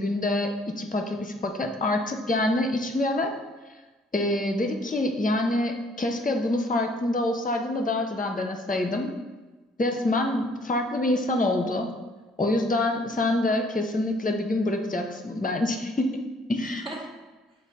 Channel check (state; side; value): normal; both; correlation 0.61